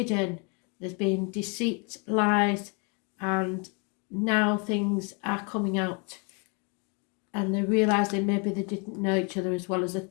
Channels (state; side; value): quieter; right; 34.1 dB